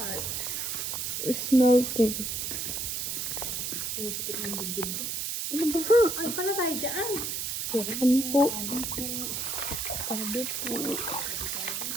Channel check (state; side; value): noise; right; hiss, 2 dB below the sound